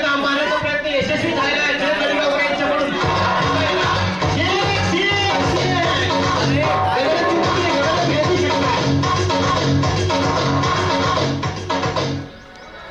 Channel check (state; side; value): identical; both; correlation 1.00